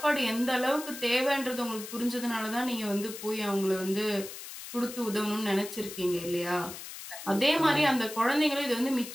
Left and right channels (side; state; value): left; noise; hiss, 11 dB below the sound